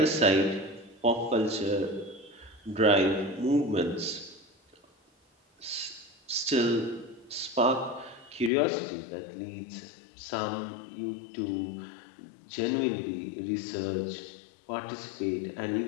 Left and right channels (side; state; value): right; drops out; at 8.5 s